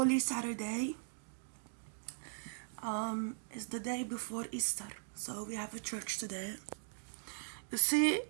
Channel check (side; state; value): left; silent; digital silence